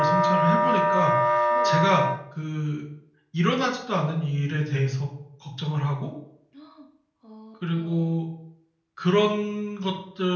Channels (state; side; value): identical; both; correlation 1.00